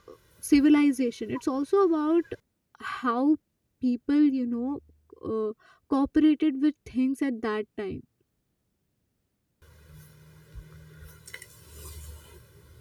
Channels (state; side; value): identical; both; correlation 1.00